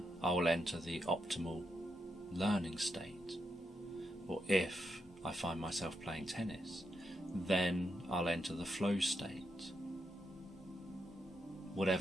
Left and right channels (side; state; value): both; normal; correlation 0.83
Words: I will enter the optimal learning state. Or if I find myself playing tennis. Then I'll enter the flow state,